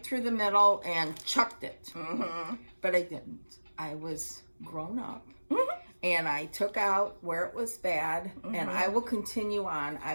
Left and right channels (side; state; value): both; inverted; correlation -1.00